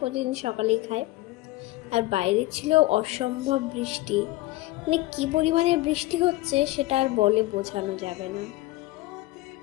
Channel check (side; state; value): right; quieter; 18.7 dB